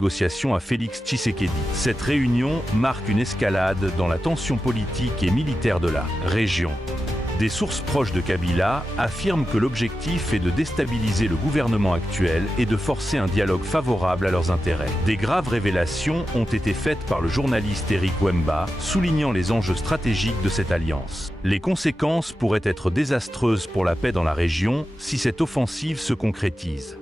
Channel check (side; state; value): both; normal; correlation 0.91